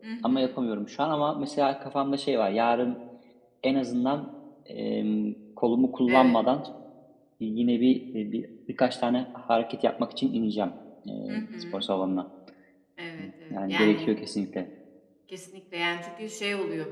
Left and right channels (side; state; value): both; identical; correlation 1.00